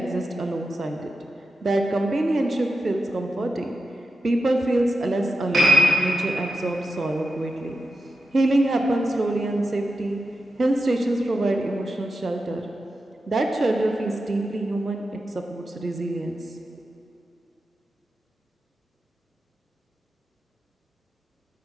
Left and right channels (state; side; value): normal; both; correlation 0.89